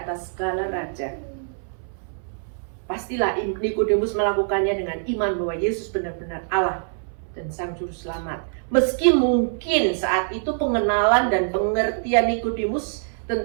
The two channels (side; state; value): left; silent; 62 dB below the other